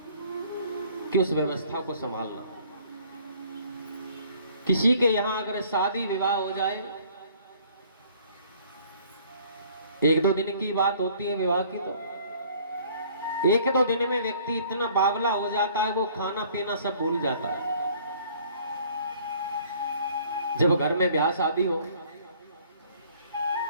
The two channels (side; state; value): both; inverted; correlation -0.56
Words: कि उस व्यवस्था को संभालना। किसी के यहां अगर शादी विवाह हो जाए, एक दो दिन की बात होती है विवाह की, तो एक दो दिन में व्यक्ति इतना बावला हो जाता है, वो खाना पीना सब भूल जाता है। जब घर में ब्याह शादी हो,